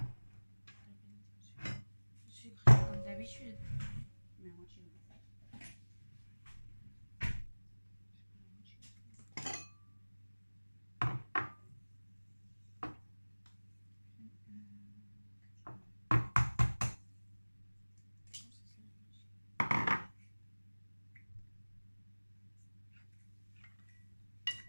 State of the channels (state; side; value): inverted; both; correlation -1.00